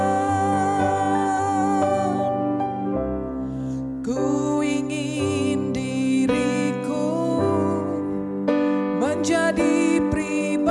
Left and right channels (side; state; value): both; identical; correlation 1.00